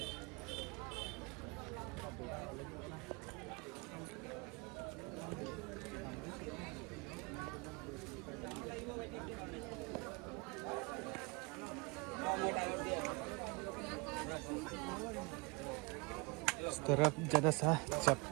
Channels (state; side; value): quieter; left; 28.6 dB